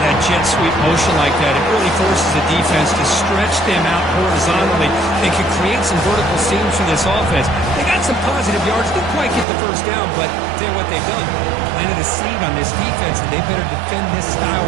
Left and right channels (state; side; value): drops out; left; at 9.5 s